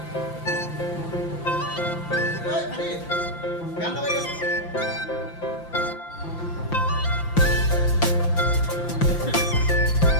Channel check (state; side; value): late; right; 5.8 ms